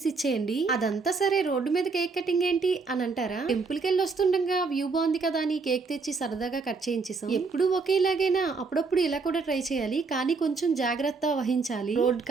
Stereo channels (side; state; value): left; quieter; 4.4 dB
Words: ఇచ్చేయండి. అదంతా సరే, రోడ్డు మీద కేక్ కటింగ్ ఏంటి అని అంటారా? టెంపుల్ కి వెళ్ళి వస్తుండగా వ్యూ బాగుంది కదా అని కేక్ తెచ్చి సరదాగా కట్ చేయించేసాం. ఎప్పుడు ఒకేలాగైనా అప్పుడప్పుడు ఇలా కూడా ట్రై చేయాలి, కానీ కొంచెం జాగ్రత్త వహించాలి రోడ్